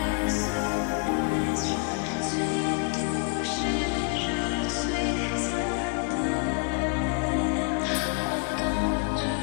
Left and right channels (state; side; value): quieter; right; 33.9 dB